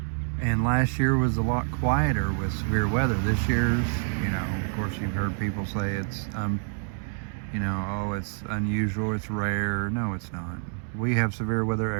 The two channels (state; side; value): silent; left; 59 dB below the other